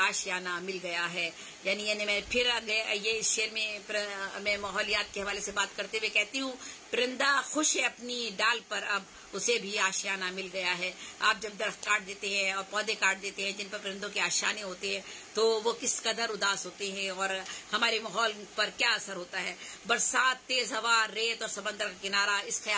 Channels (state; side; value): identical; both; correlation 1.00